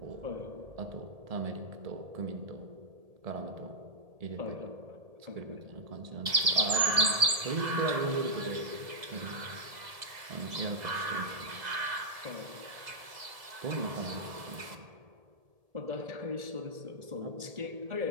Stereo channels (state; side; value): late; left; 2.0 ms